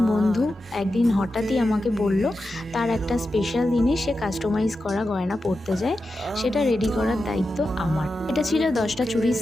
বন্ধু একদিন হঠাৎই আমাকে বলল তার একটা স্পেশাল দিনে সে কাস্টমাইজ করা গয়না পরতে যায়, সেটা রেডি করার দায়িত্ব আমার। এটা ছিল 10টা চুড়ির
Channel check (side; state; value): both; normal; correlation 0.90